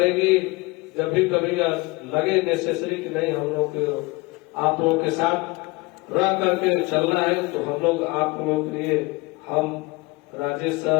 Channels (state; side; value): quieter; right; 23.9 dB